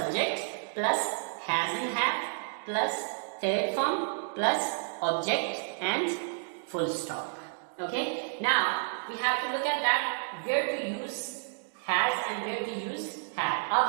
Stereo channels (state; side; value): silent; left; digital silence